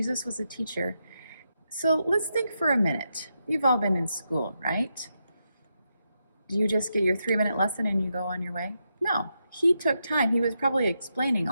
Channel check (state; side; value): inverted; both; correlation -0.84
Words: was a teacher. So let's think for a minute. You've all been in school, right? Do you just get your 3-minute lesson and you go on your way? No. He took time. He was probably explaining